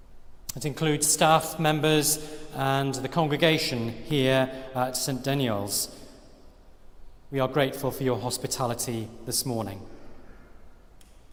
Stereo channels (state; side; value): identical; both; correlation 1.00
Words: It includes staff members and the congregation here at St. Daniel's. We are grateful for your hospitality this morning.